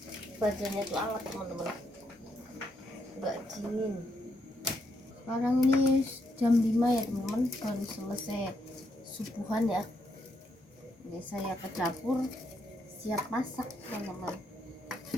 badannya tuh hangat teman-teman, nggak dingin. Sekarang ini jam 5 ya teman-teman, baru selesai subuhan ya. Ini saya ke dapur siap masak teman-teman.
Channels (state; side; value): normal; both; correlation 0.77